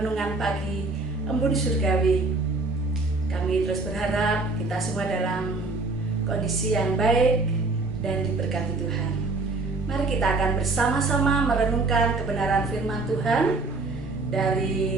pagi Embun Surgawi. Kami terus berharap kita semua dalam kondisi yang baik dan diberkati Tuhan. Mari kita akan bersama-sama merenungkan kebenaran firman Tuhan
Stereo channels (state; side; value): quieter; left; 3.5 dB